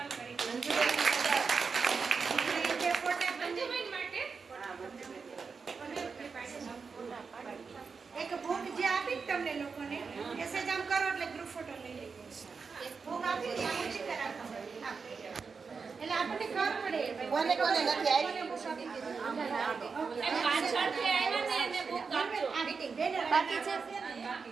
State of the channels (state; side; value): quieter; left; 5.1 dB